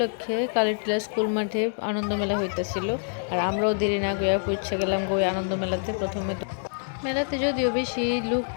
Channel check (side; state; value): right; silent; digital silence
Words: কালীটিলা স্কুল মাঠে আনন্দ মেলা হইতেছিল। আর আমরাও দেরি না গিয়া পৌঁছে গেলাম ওই আনন্দ মেলাতে। প্রথমে তো মেলাতে যদিও বেশি লুক